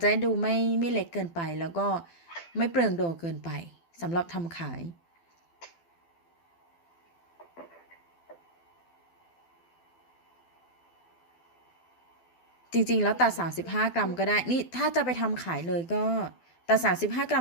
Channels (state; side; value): late; right; 12 ms